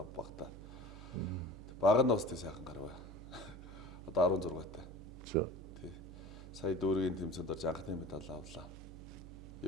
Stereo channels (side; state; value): right; noise; hum, 13 dB below the sound